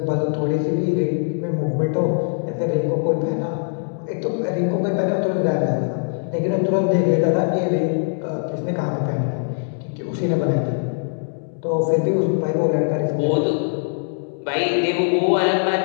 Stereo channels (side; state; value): right; silent; digital silence